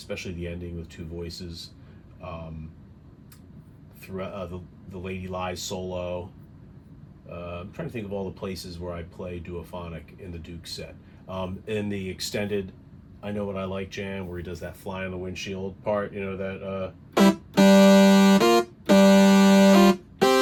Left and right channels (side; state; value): both; identical; correlation 1.00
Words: the ending with two voices. Throughout the Lady Lies solo. I'm trying to think of all the places where I play duophonic in the Duke set. In the extended I Know What I Like jam, where he does that fly on the windshield part, you know, that